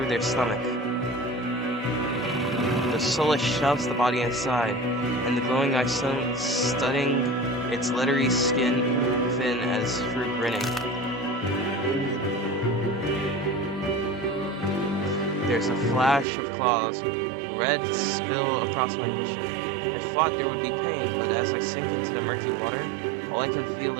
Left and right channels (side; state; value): left; drops out; at 16.2 s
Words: their stomach. The soulless shoves the body inside, and the glowing eye studying its leathery skin thin as through grinning. There's a flash of claws, red spill across my vision. I thought there would be pain, but as I sink into the murky water, all I can feel